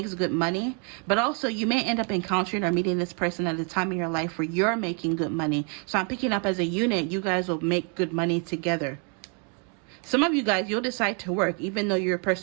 good money, but also you may end up encountering or meeting this person at a time in your life where you're making good money. So I'm picking up as a unit, you guys will make good money together. Some of you guys, you'll decide to work, even though your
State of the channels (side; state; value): left; quieter; 38.1 dB